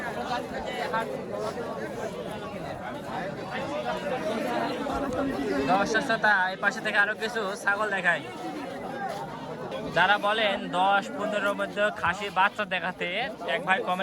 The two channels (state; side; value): identical; both; correlation 1.00